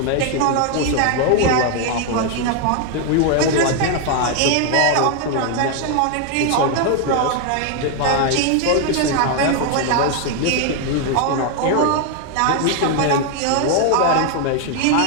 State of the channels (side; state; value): both; different; correlation 0.01